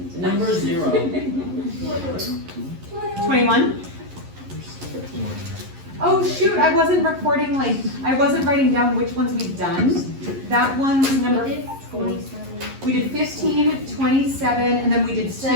Number 0. 21. Oh shoot, I wasn't recording, like, I wasn't writing down which ones we've done. That one's number We did 4. 27. We did 15, 27, and then we did 2.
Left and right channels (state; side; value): late; left; 11 ms